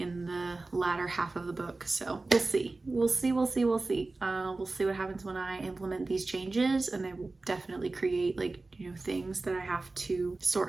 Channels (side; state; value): left; quieter; 3.4 dB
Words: in the latter half of the book. So we'll see. We'll see what happens when I implement these changes, and they will definitely create things that I have to